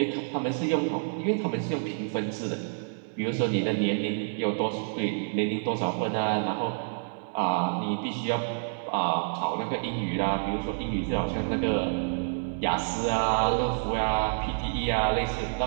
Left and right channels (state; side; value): silent; left; 59 dB below the other